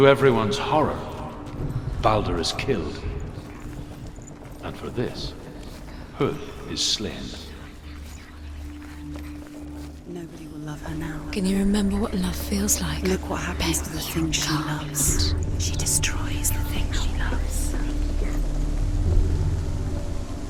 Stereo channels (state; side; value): identical; both; correlation 1.00